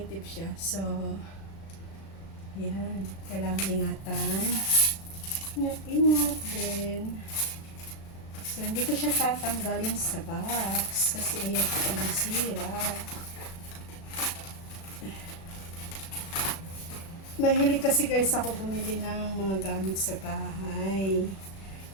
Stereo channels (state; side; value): late; right; 36 ms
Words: siya. So, yan. Kailangan ingatan. Ingat-ingat din. So, hindi ko siya tatanggalin sa box. Kasi ayaw ko pa masira. Mahilig kasi guys ako bumili ng mga gamit sa bahay.